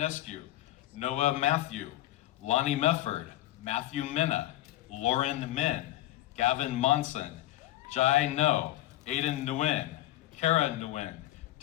Noah Matthew, Lonnie Mefford, Matthew Minna, Lauren Min, Gavin Monson, Jai No, Aiden Nguyen, Kara Nguyen,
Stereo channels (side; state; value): right; quieter; 15.2 dB